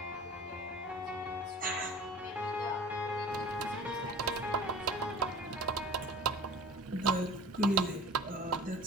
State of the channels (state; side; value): normal; both; correlation 0.40